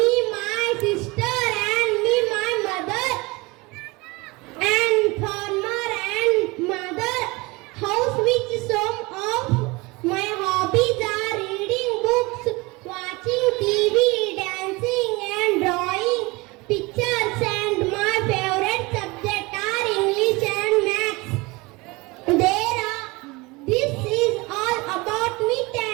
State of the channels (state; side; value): quieter; left; 24.2 dB